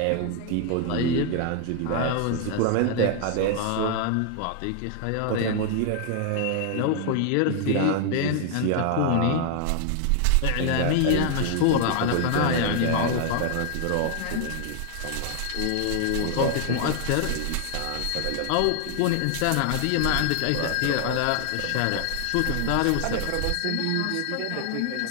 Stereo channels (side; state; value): both; different; correlation 0.00